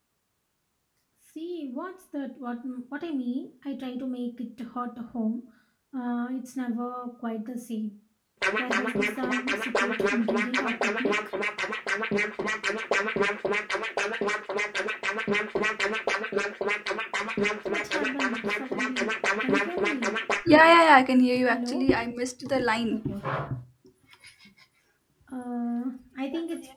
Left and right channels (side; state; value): both; identical; correlation 1.00